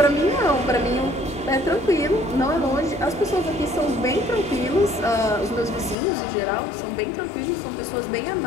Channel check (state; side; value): drops out; right; at 6.0 s